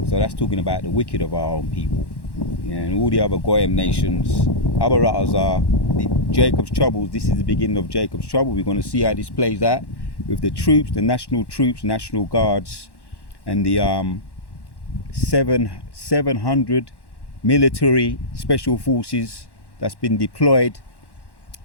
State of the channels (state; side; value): late; right; 1.1 ms